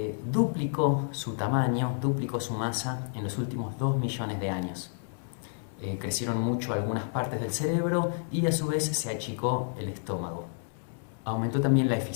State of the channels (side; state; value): right; silent; 58 dB below the other